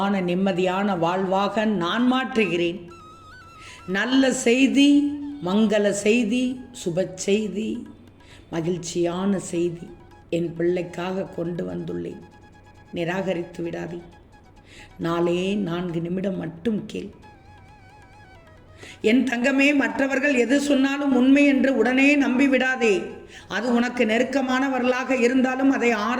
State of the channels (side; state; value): both; identical; correlation 1.00